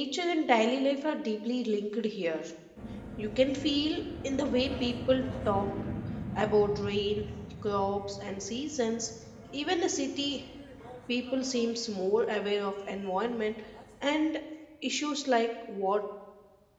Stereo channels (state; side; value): identical; both; correlation 1.00